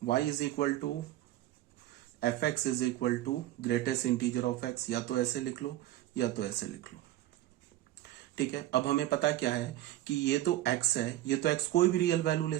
y is equal to f x is equal to greatest integer of x, या तो ऐसे लिख लो या तो ऐसे लिख लो। ठीक है, अब हमें पता क्या है कि ये तो x है, ये तो x कोई भी रियल वैल्यू ले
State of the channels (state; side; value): quieter; left; 14.3 dB